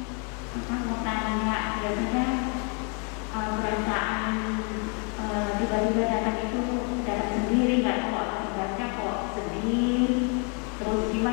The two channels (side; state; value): right; quieter; 37.0 dB